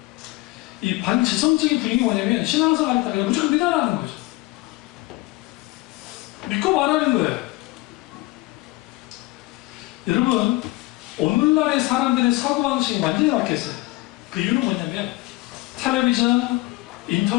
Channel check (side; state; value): right; quieter; 20.8 dB